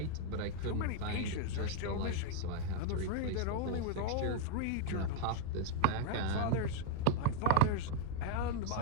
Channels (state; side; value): different; both; correlation -0.01